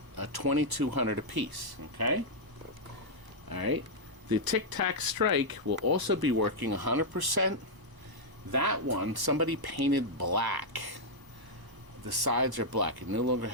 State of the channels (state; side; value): late; left; 1.1 ms